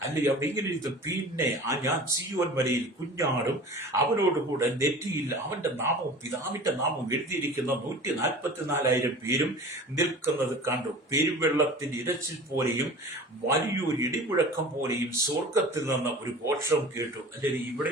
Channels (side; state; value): both; normal; correlation 0.39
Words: അല്ലെ അവിടെ ഇങ്ങനെ ഇരുന്നു. പിന്നെ ഞാൻ സീയോൻ മലയിൽ കുഞ്ഞാടും അവനോടുകൂടെ നെറ്റിയിൽ അവന്റെ നാമവും പിതാവിന്റെ നാമവും എഴുതിയിരിക്കുന്ന 144,000 പേരും നിൽക്കുന്നത് കണ്ടു. പെരുവെള്ളത്തിന്റെ ഇരച്ചിൽ പോലെയും വലിയൊരു ഇടിമുഴക്കം പോലെയും സ്വർഗത്തിൽ നിന്ന് ഒരു ഘോഷം കേട്ടു. അല്ലെങ്കിൽ